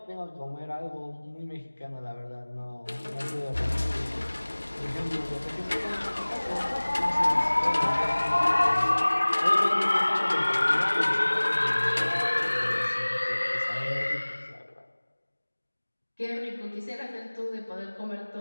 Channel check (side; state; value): both; inverted; correlation -1.00